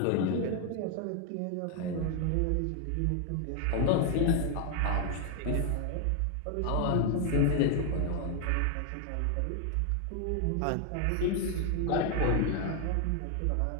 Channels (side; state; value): both; different; correlation 0.00